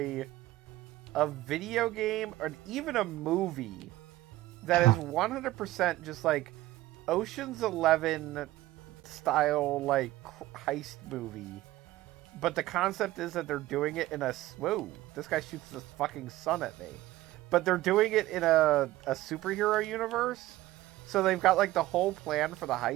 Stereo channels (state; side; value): quieter; left; 16.6 dB